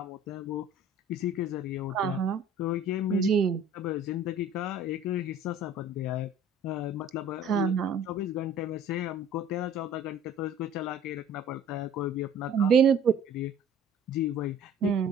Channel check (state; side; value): normal; both; correlation 0.49